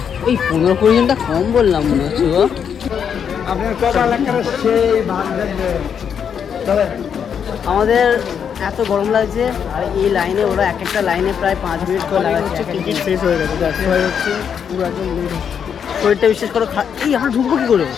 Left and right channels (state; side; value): quieter; right; 7.6 dB